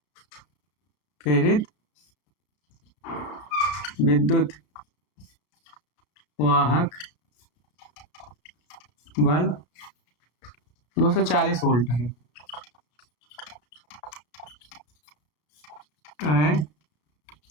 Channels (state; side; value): late; right; 33 ms